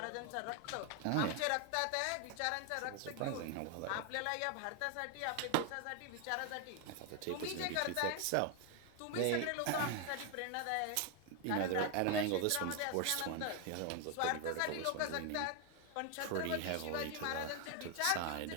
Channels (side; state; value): both; different; correlation 0.01